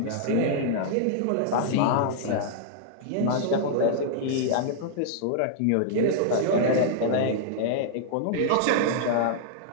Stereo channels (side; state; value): both; different; correlation -0.01